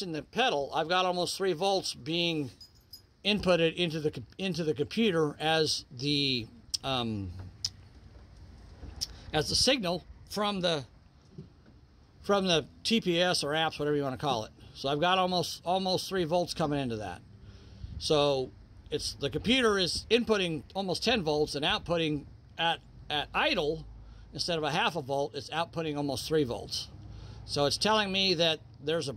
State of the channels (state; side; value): identical; both; correlation 1.00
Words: the pedal. I've got almost 3 volts being inputted into the computer as the signal from the TPS or apps, whatever you want to call it. So I've got almost 3 volts coming into that. So the computer is inputting almost 10 volts and outputting at idle, instead of a half a volt, it's outputting almost 3 volts. So it's telling me that there's a